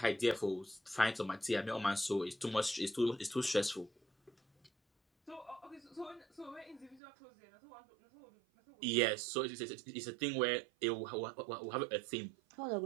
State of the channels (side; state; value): left; drops out; at 7.0 s